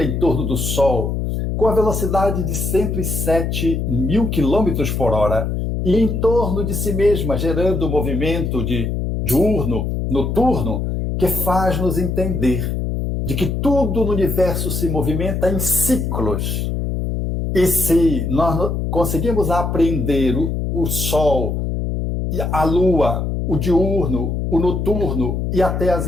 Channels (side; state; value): left; noise; hum, 1 dB below the sound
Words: em torno do Sol, com a velocidade de 107 mil quilômetros por hora, e em torno de si mesma, gerando um movimento de diurno, noturno, que faz nos entender de que tudo no universo se movimenta em ciclos. E se nós conseguimos aprender o Sol, a Lua, o diurno, o noturno e até as